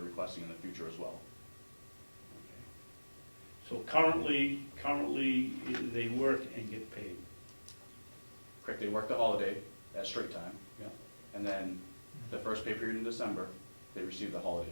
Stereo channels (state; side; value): inverted; both; correlation -1.00